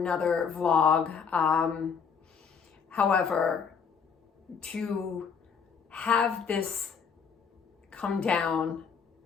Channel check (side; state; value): right; quieter; 6.4 dB